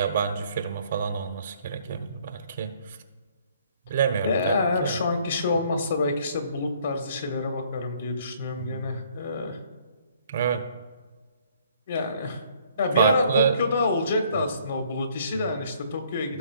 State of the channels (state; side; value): inverted; both; correlation -0.62